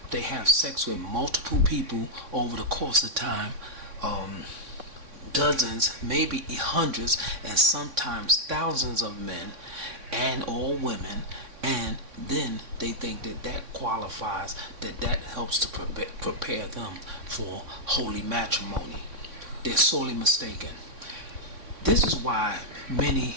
They have sex with multiple people over the course of time, um, dozens, maybe hundreds, and sometimes thousands of men and or women, and then they think that that qualifies, that helps to prepare them for holy matrimony. They're sorely mistaken. This is why many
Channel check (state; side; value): late; left; 3.6 ms